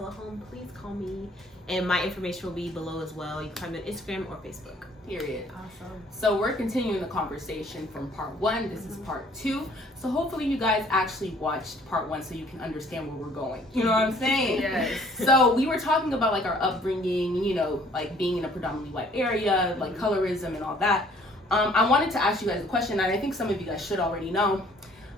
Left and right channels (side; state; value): both; normal; correlation 0.58